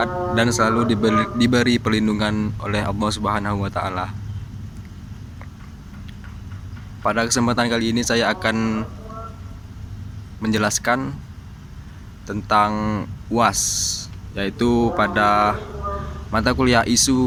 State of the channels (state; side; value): identical; both; correlation 1.00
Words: dan selalu diberi perlindungan oleh Allah Subhanahu wa Ta'ala. Pada kesempatan kali ini saya akan menjelaskan tentang UAS, yaitu pada mata kuliah